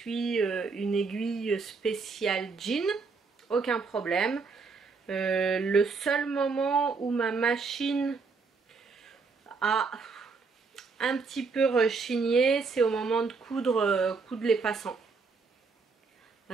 une aiguille spéciale jean, aucun problème. Le seul moment où ma machine a un petit peu rechigné, c'est au moment de coudre les passants.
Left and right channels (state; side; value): quieter; left; 4.6 dB